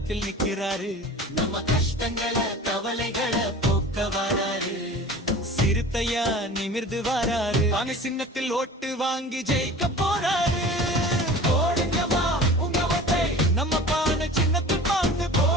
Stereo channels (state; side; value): normal; both; correlation 0.40